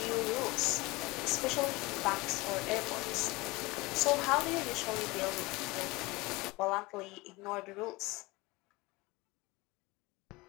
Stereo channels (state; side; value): quieter; right; 22.9 dB